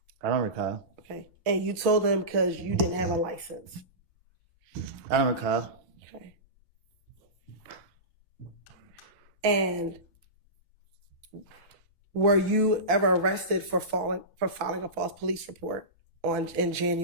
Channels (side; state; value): left; late; 4.6 ms